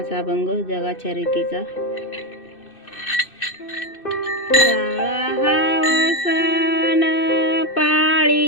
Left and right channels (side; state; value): right; late; 2.6 ms